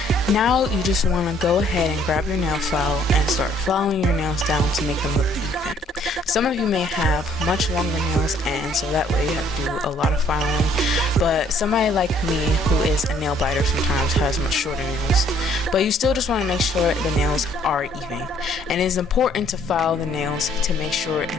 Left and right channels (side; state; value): both; normal; correlation 0.63